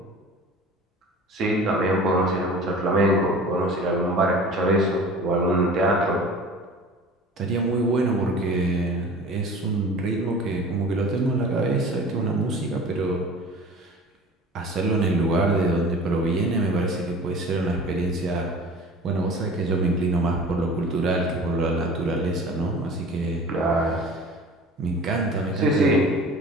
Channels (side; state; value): both; normal; correlation 0.41